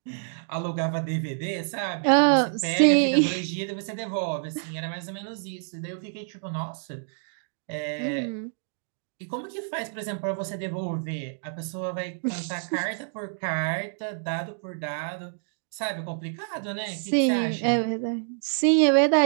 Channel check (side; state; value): left; silent; digital silence